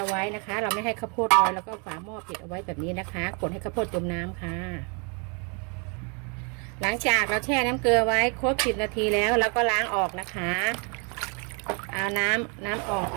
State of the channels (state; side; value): quieter; left; 35.5 dB